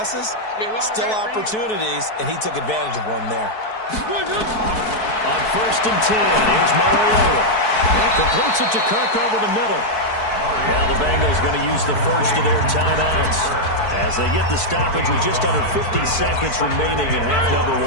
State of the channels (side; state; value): right; late; 4.6 ms